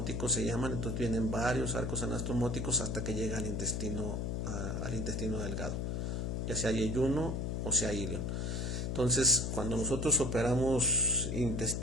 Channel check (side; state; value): left; noise; hum, 1 dB below the sound